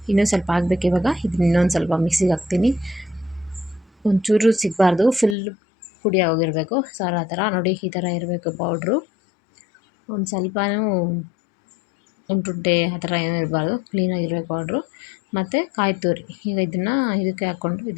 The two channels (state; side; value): drops out; right; at 5.4 s